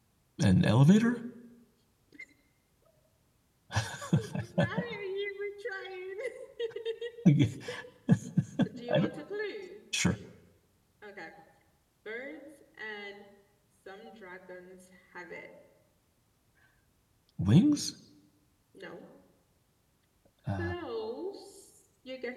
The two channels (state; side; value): identical; both; correlation 1.00